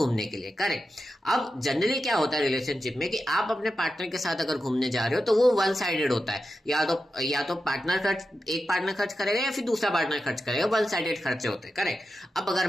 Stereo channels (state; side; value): normal; both; correlation 0.90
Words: के लिए, करेक्ट। अब जनरली क्या होता है रिलेशनशिप में कि आप अपने पार्टनर के साथ अगर घूमने जा रहे हो तो वो वन साइडेड होता है। या तो एक पार्टनर खर्च करेगा या फिर दूसरा पार्टनर खर्च करेगा, वन साइडेड खर्चे होते हैं, करेक्ट। अब अगर